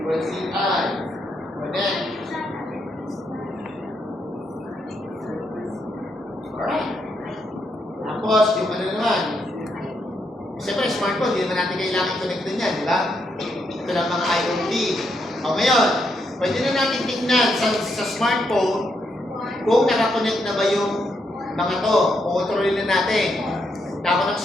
equals CI. Connect. Alright. Tapos, yung ano naman. Siyempre, smartphone, hindi naman natin kailangan connect din yan, di ba? Ito lang mga IoT. O ngayon, pwede na natin tingnan sa smartphone kung nakakonect na ba yung mga to. Kontrolin na natin. Tapos ng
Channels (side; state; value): both; normal; correlation 0.79